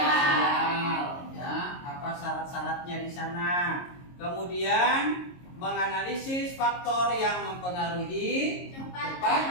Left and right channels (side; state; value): right; late; 22 ms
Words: Ya, apa syarat-syaratnya di sana? Kemudian menganalisis faktor yang mempengaruhi cepat